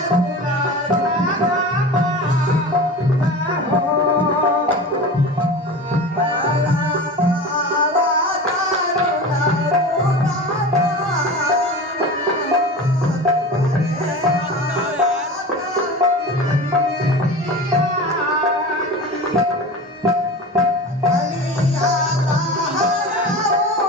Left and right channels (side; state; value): both; normal; correlation 0.32